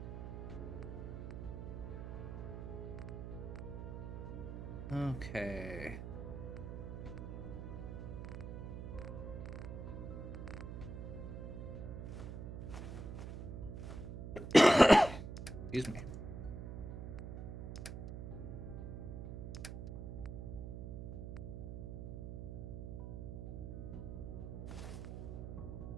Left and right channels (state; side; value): noise; right; hum, 6 dB below the sound